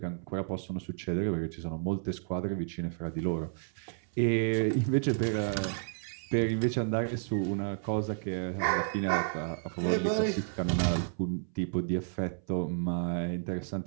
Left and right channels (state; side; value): silent; left; 57 dB below the other